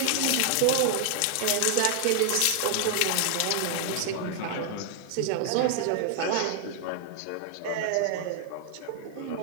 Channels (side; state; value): both; different; correlation 0.00